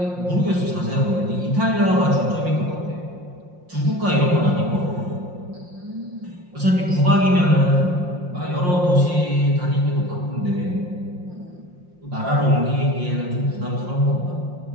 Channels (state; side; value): late; left; 5.6 ms